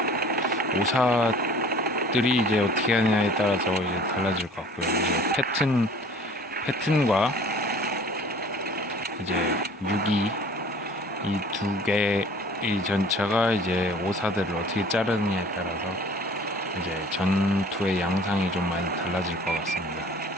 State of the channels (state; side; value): normal; both; correlation 0.48